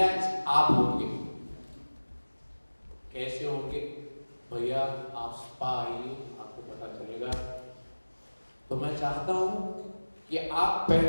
आप होंगे। कैसे होंगे भैया? आप स्पा आइए, आपको पता चलेगा। तो मैं चाहता हूं कि आप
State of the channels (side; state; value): both; inverted; correlation -1.00